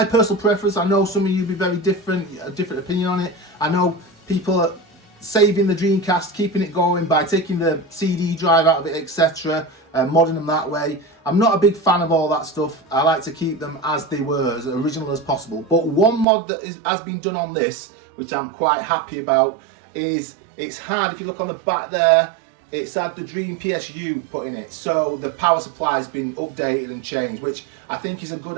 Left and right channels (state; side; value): drops out; left; at 16.2 s